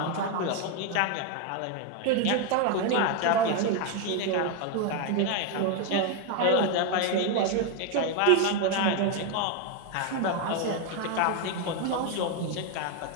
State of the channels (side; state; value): both; different; correlation 0.01